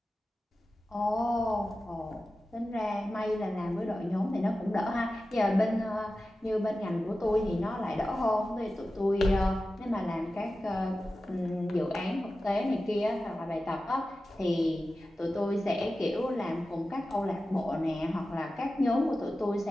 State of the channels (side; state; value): both; normal; correlation 0.94